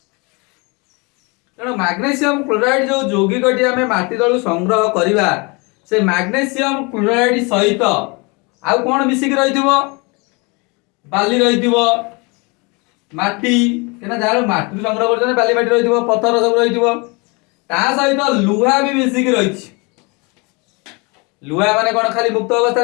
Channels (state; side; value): quieter; right; 29.1 dB